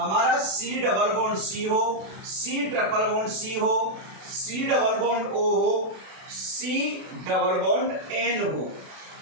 C डबल बॉन्ड C हो, C ट्रिपल बॉन्ड C हो, C डबल बॉन्ड O हो, C डबल बॉन्ड N हो।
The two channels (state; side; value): late; left; 32 ms